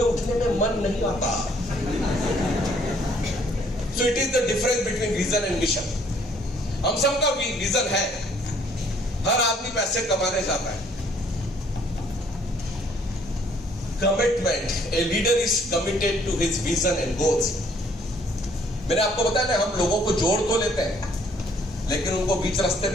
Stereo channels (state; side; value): normal; both; correlation 0.62